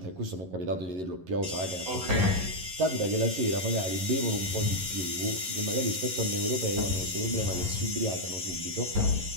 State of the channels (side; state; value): left; late; 11 ms